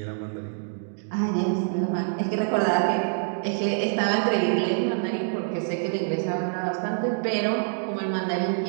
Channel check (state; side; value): silent; left; digital silence